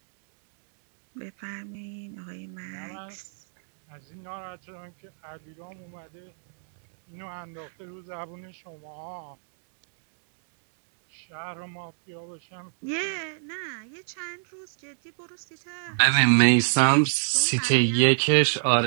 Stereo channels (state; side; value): silent; left; digital silence